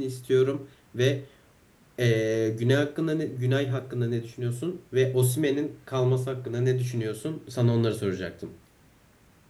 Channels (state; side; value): identical; both; correlation 1.00